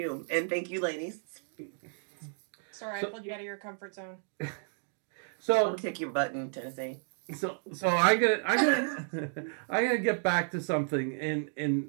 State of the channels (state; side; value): silent; left; digital silence